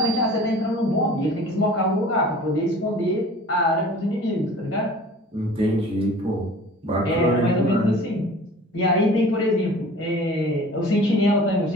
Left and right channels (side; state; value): both; normal; correlation 0.45